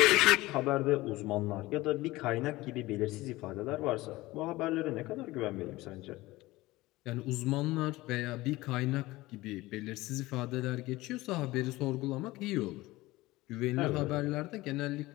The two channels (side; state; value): right; quieter; 19.1 dB